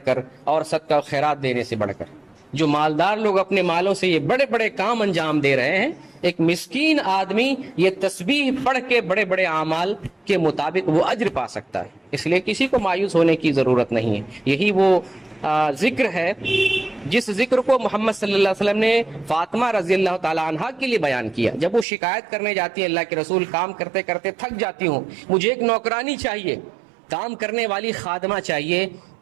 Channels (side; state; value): left; drops out; at 21.9 s